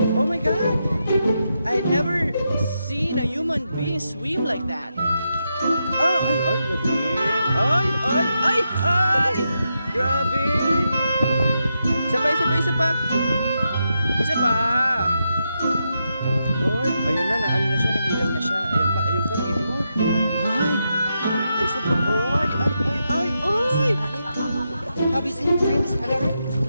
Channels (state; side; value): inverted; both; correlation -0.85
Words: Oh my god. I never seen a human being swim like that. Oh, ay, galing. Ay. Grabe. Isa pa. Isa pa. Oy, ayun na, ano na siya, nahilap na siya. Ayun pa, nagitin mo. Ay, isa pa. Ay. Have you seen Prince Harry?